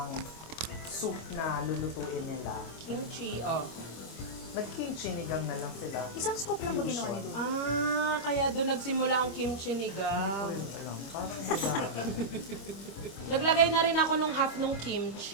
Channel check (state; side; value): late; right; 25 ms